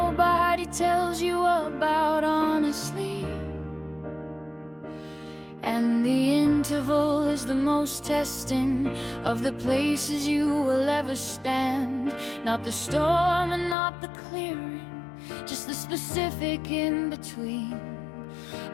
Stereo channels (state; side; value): drops out; right; at 13.8 s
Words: tells you about honestly. And the interval is the most testing of the places you will ever stand. Not the storm and not the clearing, just the specific in between